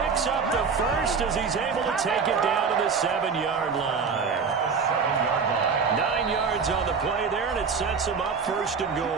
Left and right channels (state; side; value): quieter; left; 5.5 dB